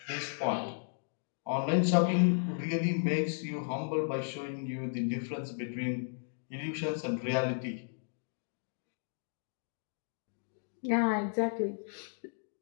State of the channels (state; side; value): silent; right; digital silence